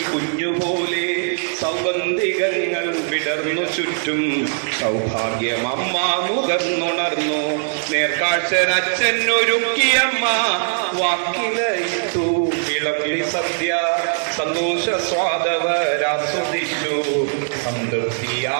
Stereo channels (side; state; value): left; silent; digital silence